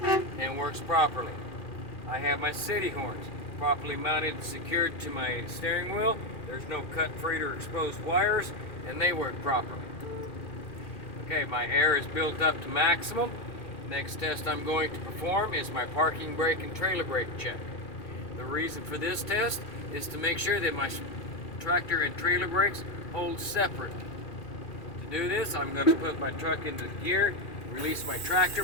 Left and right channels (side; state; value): right; late; 2.4 ms